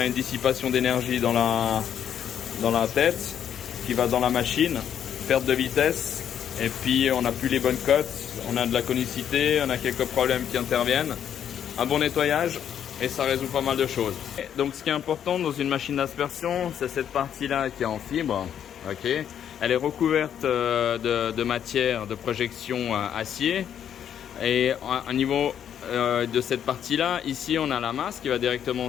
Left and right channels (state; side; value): quieter; right; 9.3 dB